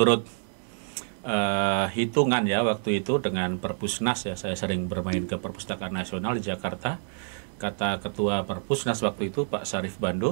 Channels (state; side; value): silent; left; 60 dB below the other